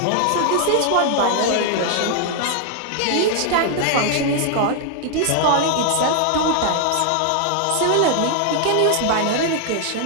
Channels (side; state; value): both; different; correlation 0.00